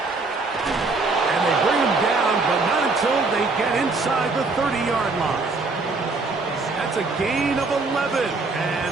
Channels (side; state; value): left; quieter; 3.7 dB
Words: And they bring him down, but not until they get inside the 30-yard line. That's a gain of 11,